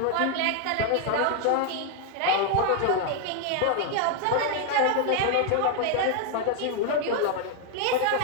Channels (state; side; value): different; both; correlation 0.01